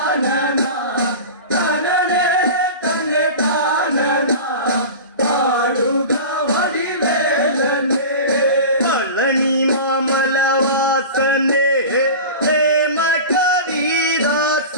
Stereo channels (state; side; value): inverted; both; correlation -0.31